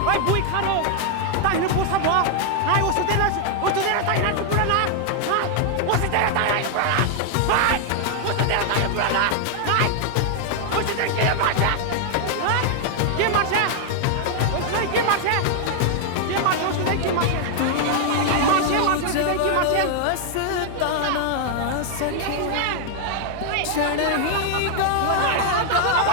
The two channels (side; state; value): both; different; correlation 0.00